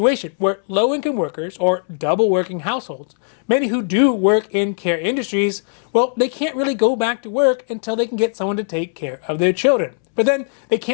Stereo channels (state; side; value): silent; right; 65 dB below the other